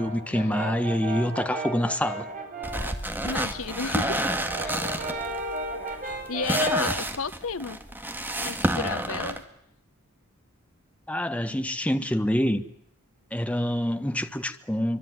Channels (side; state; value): both; normal; correlation 0.60